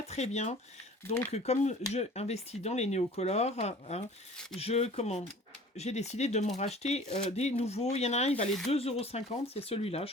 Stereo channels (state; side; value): normal; both; correlation 0.46